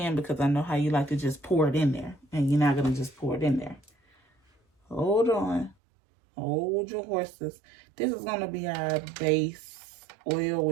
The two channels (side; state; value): left; drops out; at 5.8 s